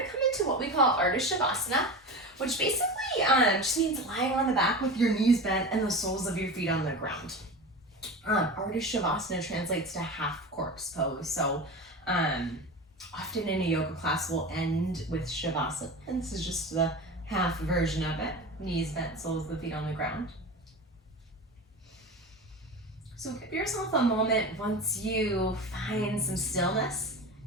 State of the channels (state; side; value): normal; both; correlation 0.29